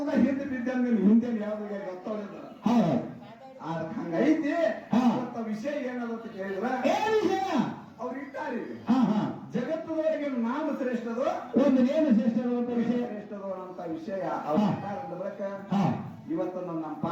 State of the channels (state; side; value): identical; both; correlation 1.00